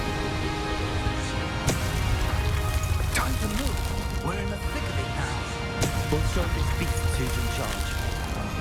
Time to move. We're in the thick of it now. We'll show this beast who's in charge.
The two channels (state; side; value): identical; both; correlation 1.00